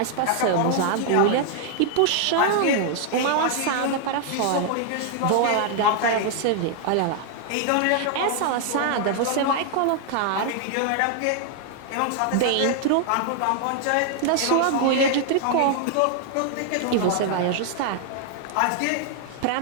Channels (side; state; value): both; different; correlation 0.00